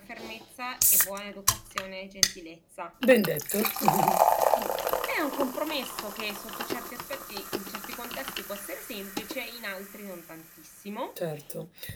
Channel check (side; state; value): both; identical; correlation 1.00